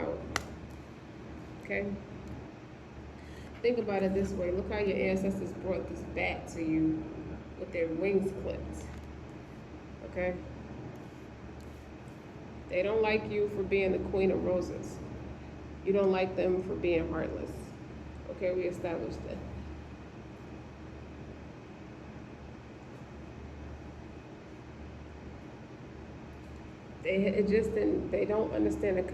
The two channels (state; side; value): identical; both; correlation 1.00